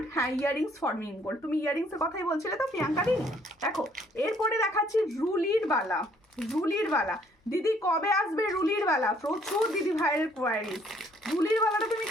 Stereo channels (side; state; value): both; normal; correlation 0.63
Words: হ্যাঁ ইয়ারিংস ফর্মিং গোল্ড। তুমি ইয়ারিংসের কথাই বলছিলে তো প্রিয়াঙ্কা দি। দেখো এরপরে দেখাচ্ছি রুলির বালা। রুলির বালা দিদি কবে আসবে? রুলির বালা প্রচুর দিদি ভাইয়ের কোয়ারিজ। রুলির বালাটা তুমি